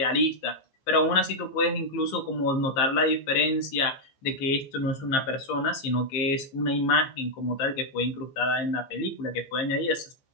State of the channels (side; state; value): right; late; 15 ms